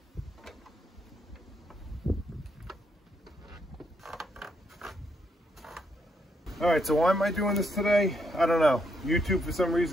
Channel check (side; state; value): both; normal; correlation 0.76